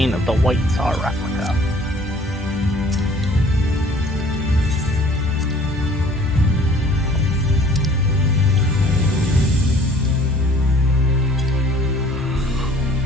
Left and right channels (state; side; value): normal; both; correlation 0.54